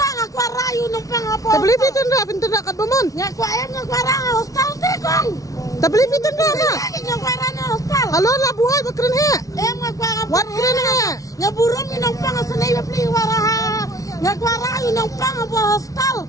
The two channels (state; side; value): late; right; 0.17 ms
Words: aku rayu nang pang apa. Tapi lebih tenang kat bamon. Ngaku ayam ngaku arang hostal tekong. Tapi lebih tenang ah. Ngaku arang hostal. Halo lah buai bakren he. Ngaku arang. Wat keren he. Ngaburum nang pang senai beli waraha. Ngaku arayu nang pang apa hostal.